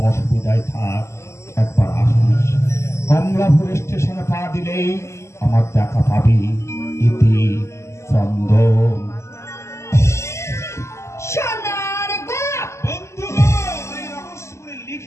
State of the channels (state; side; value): late; right; 0.13 ms